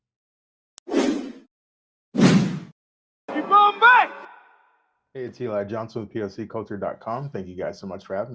Hey, it's Eli Johnson with POCculture.com. Thank you guys so much for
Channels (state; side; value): identical; both; correlation 1.00